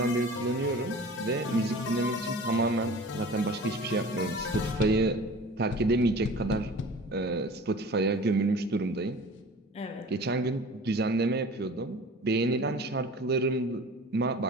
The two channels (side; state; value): both; normal; correlation 0.41